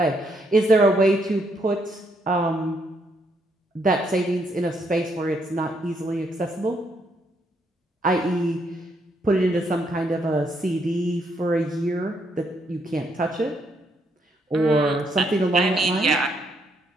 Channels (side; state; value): both; normal; correlation 0.74